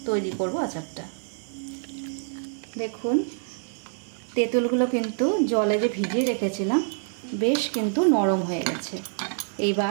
তৈরি করব আচারটা। দেখুন তেঁতুলগুলো কিন্তু জলে যে ভিজিয়ে রেখেছিলাম বেশ কিন্তু নরম হয়ে গেছে।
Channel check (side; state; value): left; silent; digital silence